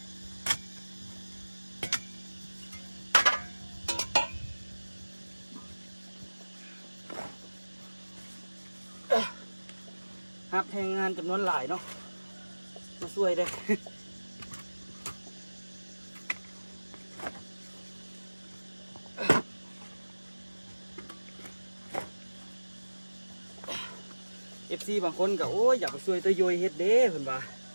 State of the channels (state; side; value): inverted; both; correlation -1.00